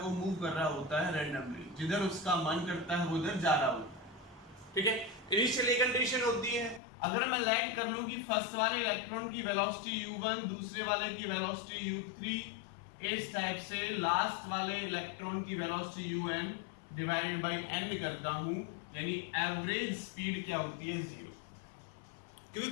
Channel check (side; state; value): right; drops out; at 6.8 s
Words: वो मूव कर रहा होता है रैंडमली, जिधर उसका मन करता है वो उधर जा रहा होता है। ठीक है, इनिशियली कंडीशन होती है, अगर मैं लैंड कर लूं कि फर्स्ट वाले इलेक्ट्रॉन की वेलोसिटी u1, दूसरे वाले की वेलोसिटी u3, इस टाइप से लास्ट वाले इलेक्ट्रॉन की velocity un divide by n करता हूं, यानी एवरेज स्पीड क्या होती है? 0। क्योंकि